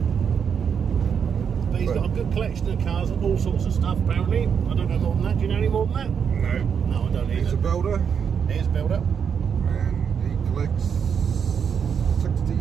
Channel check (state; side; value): quieter; left; 7.2 dB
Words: But he's got a good collection of cars and all sorts of stuff, apparently. I don't know more than that. Do you know any more than that? No. No, I don't either. He's a builder. He is a builder. And he collects